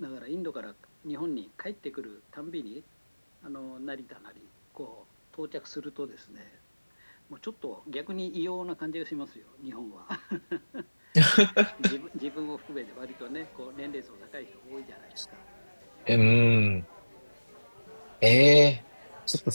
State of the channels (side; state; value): both; inverted; correlation -1.00